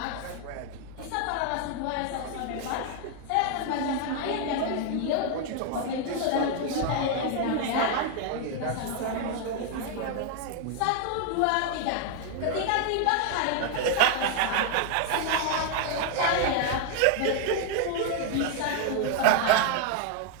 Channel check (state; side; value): different; both; correlation 0.00